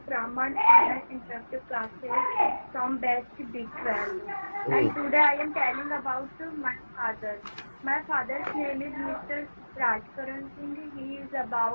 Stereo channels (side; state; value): both; inverted; correlation -1.00